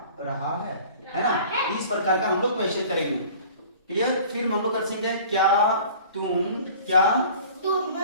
रहा है ना? इस प्रकार का हम लोग क्वेश्चन करेंगे। क्लियर? फिर हम लोग कर सकते हैं, क्या तुम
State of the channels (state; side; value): inverted; both; correlation -0.46